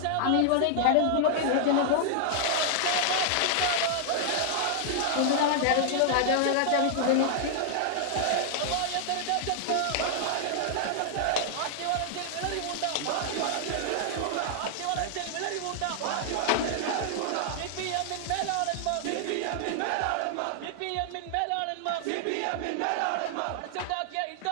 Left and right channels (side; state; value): both; different; correlation -0.01